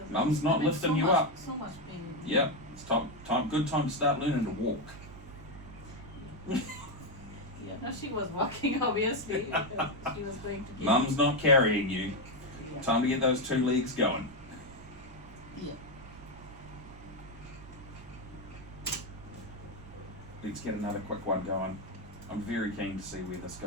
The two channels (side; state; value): right; noise; rumble, 19 dB below the sound